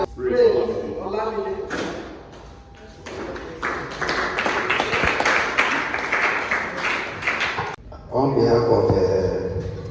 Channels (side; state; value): both; identical; correlation 1.00